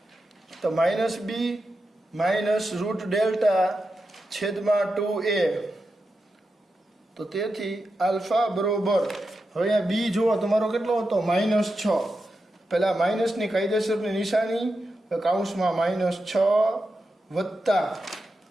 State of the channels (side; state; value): both; normal; correlation 0.89